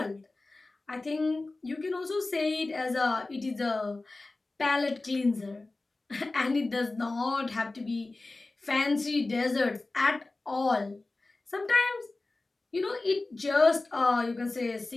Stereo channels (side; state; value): right; quieter; 3.2 dB